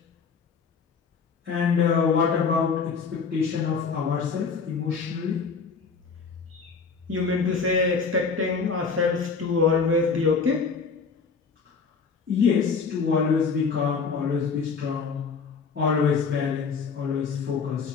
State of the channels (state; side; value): quieter; right; 5.3 dB